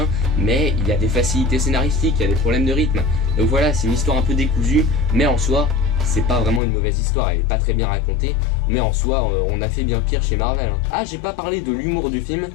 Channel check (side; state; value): right; drops out; at 6.6 s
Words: mais il y a des facilités scénaristiques, il y a des problèmes de rythme. Donc voilà, c'est une histoire un peu décousue, mais en soi, c'est pas vraiment une mauvaise histoire, elle est pas très bien racontée, mais en soi, on a fait bien pire chez Marvel. Ah, j'ai pas parlé de l'humour du film,